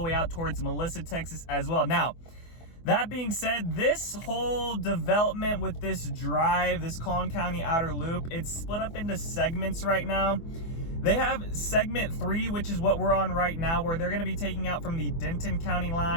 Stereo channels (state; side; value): late; right; 24 ms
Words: way out towards Melissa, Texas as well. Now, that being said, this whole development with this drive, this Collin County Outer Loop, it's split up into segments right now. They have segment 3, which is what we're on right now, where they're going to be taking out from the Denton County